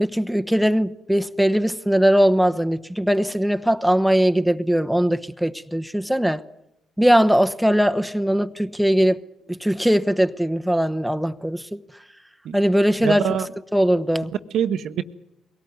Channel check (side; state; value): both; normal; correlation 0.97